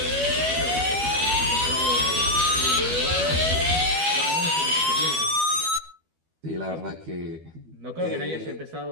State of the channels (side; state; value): left; late; 12 ms